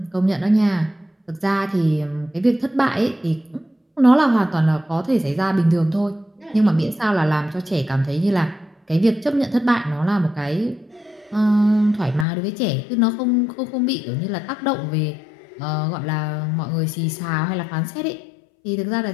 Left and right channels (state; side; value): drops out; right; at 12.2 s